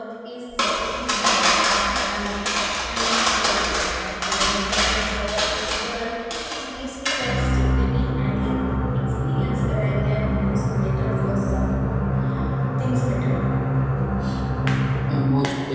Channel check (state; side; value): identical; both; correlation 1.00